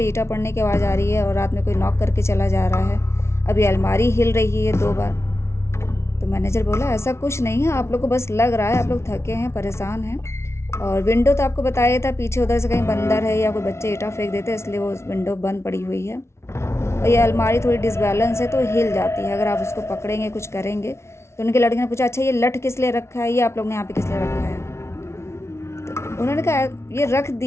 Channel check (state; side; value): late; right; 0.13 ms